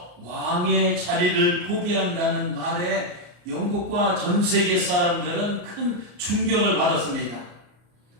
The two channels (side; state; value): left; late; 33 ms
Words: 왕의 자리를 포기한다는 말에 영국과 전 세계 사람들은 큰 충격을 받았습니다.